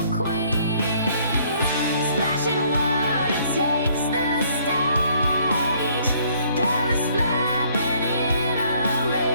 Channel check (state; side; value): inverted; both; correlation -0.63